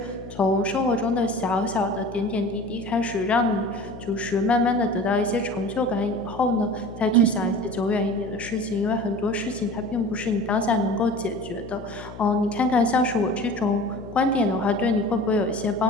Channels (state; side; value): noise; left; hum, 14 dB below the sound